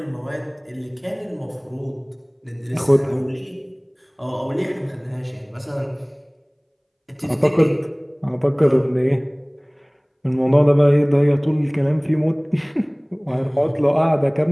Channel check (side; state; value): both; identical; correlation 1.00